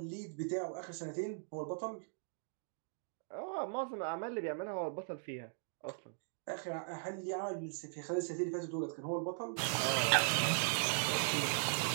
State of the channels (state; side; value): silent; left; digital silence